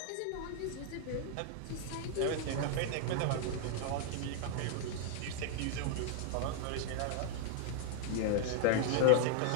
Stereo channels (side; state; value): both; different; correlation 0.00